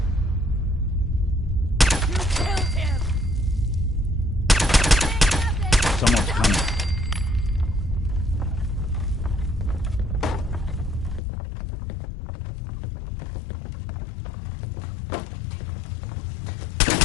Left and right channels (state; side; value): drops out; right; at 11.2 s